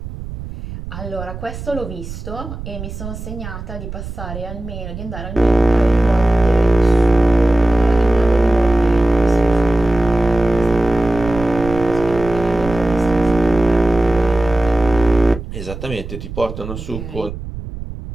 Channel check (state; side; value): noise; right; rumble, 10 dB below the sound